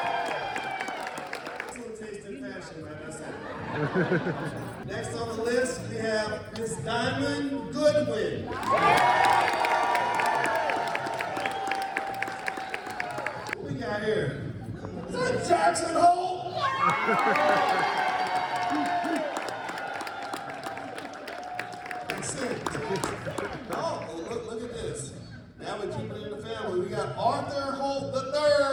Excellent taste in fashion, like I said. Next on the list, we have Miss Diamond Goodwin. What we got here? Is that Jackson Hole? Oh, look at this. Now we're keeping it in the family. We got Arthur Holt III.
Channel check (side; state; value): both; identical; correlation 1.00